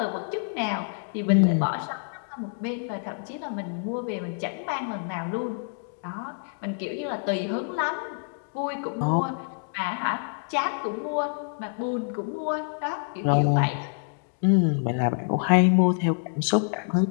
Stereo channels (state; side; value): silent; right; digital silence